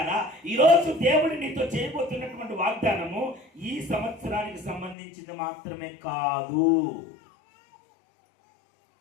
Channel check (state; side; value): drops out; right; at 5.0 s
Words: ఈరోజు దేవుడు నీతో చేయబోతున్నటువంటి వాగ్దానము ఈ సంవత్సరానికి సంబంధించింది మాత్రమే కాదు,